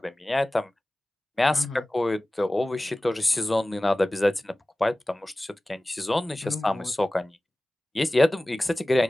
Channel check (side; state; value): both; normal; correlation 0.98